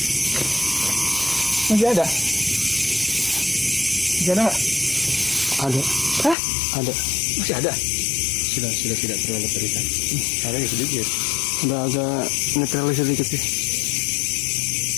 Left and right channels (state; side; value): drops out; right; at 6.4 s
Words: Masih ada. Masih ada nggak? Ada. Hah? Ada. Masih ada. Sudah tidak terlalu terlihat. Ada ya sedikit. Udah agak netralis sedikit sih.